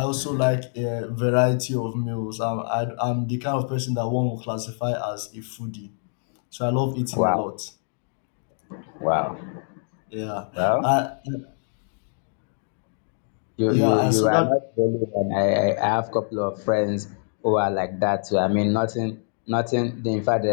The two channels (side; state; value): right; silent; 62 dB below the other